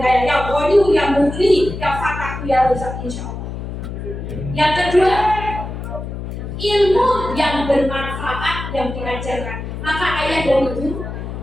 kaya, yang Ghani, yang Mughni, yang Fatah, yang Razak, insya Allah. Yang kedua, ilmu yang bermanfaat yang diajarkan. Maka ayah dan ibu,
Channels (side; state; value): left; noise; hum, 7 dB below the sound